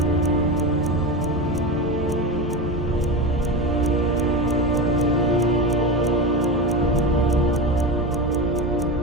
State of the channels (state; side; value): normal; both; correlation 0.21